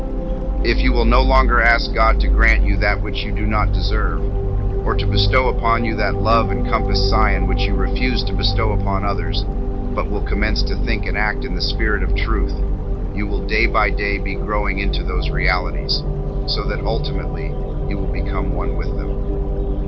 if you will no longer ask God to grant you that which you do not deserve, or to bestow upon you that love and compass scion which you refuse to bestow upon others, but will commence to think and act in the spirit of truth, you will day by day be growing into those realities. so that ultimately you will become one with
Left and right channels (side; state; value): both; identical; correlation 1.00